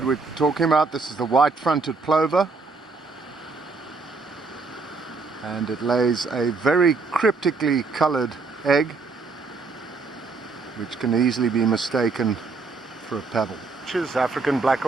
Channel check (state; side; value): quieter; left; 4.1 dB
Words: we're talking about. This is the white-fronted plover, and it lays a very cryptically coloured egg, which can easily be mistaken for a pebble. African black